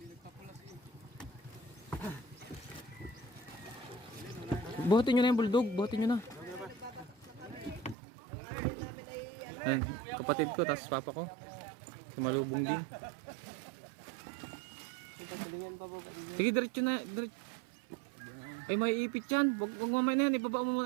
Buhatin nyo na yung bulldog, buhatin nyo na. Ayan, kapatid ko, tapos papa ko. Sumalubong din. Pagkalingan pa po. Sige, diretso na. Diretso. Ay, may ipit yan. Wag mamaya na yan. Ibaba mo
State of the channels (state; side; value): drops out; left; at 8.0 s